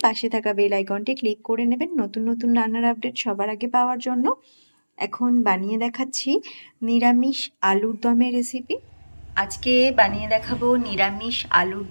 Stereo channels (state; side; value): inverted; both; correlation -1.00